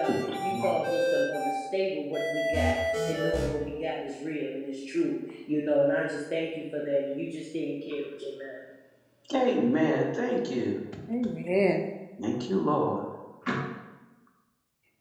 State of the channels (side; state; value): both; identical; correlation 1.00